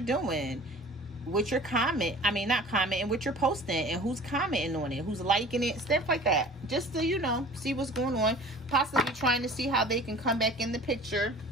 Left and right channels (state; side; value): normal; both; correlation 0.44